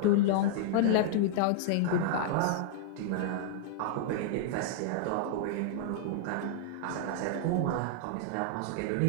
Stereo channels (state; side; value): different; both; correlation -0.01